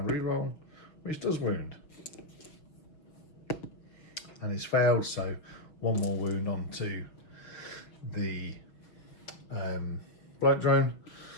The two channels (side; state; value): right; late; 6.3 ms